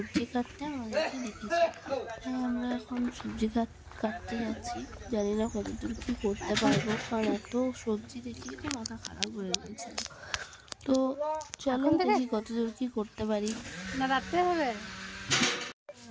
কাটতে আমাদেরকে দেখেছি। তাই আমরা এখন সবজি কাটতে যাচ্ছি। জানি না কতদূর কী করতে পারবো, কারণ এত সবজি দেখে তো মাথা খারাপ হয়ে গেছিল। তো চলো দেখি কতদূর কী করতে পারি। না রাখতে হবে।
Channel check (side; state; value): both; identical; correlation 1.00